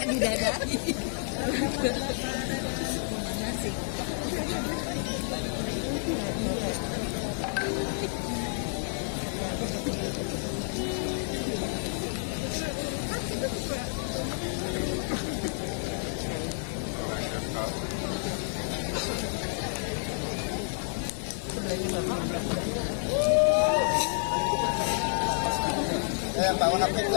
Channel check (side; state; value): right; silent; 58 dB below the other